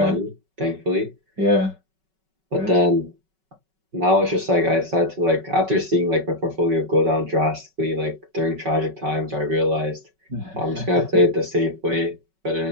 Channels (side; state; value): left; late; 5.3 ms